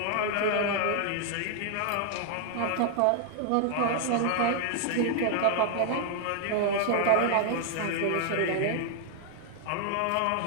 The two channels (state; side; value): different; both; correlation 0.00